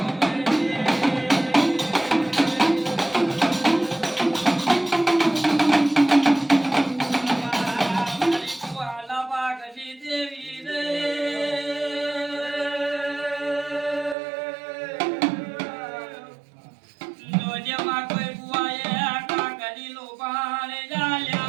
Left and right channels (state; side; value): drops out; left; at 14.2 s